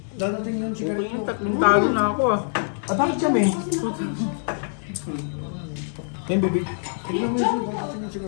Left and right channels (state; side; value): silent; right; digital silence